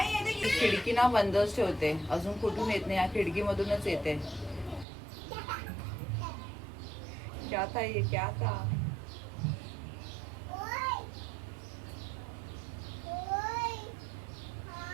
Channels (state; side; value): drops out; left; at 4.9 s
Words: ये देख. खिडकी ना बंदच ठेवते, अजून कुठून येत नाही, या खिडकीमधूनच येते. क्या था ये, क्या था?